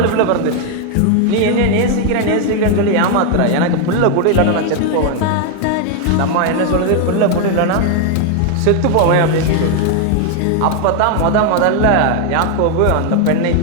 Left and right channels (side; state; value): both; different; correlation 0.01